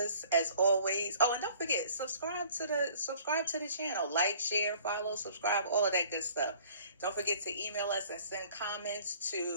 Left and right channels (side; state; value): both; inverted; correlation -0.52